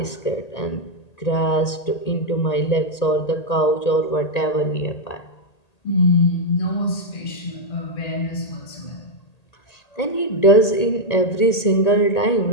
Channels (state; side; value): late; right; 1.8 ms